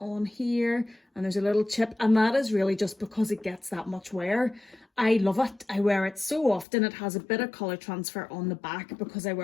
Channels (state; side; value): drops out; right; at 6.7 s